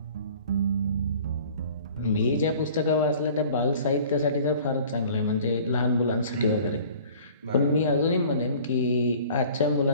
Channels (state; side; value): inverted; both; correlation -0.49